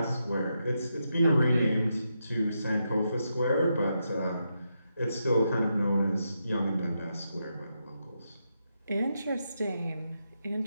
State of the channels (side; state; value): both; inverted; correlation -0.84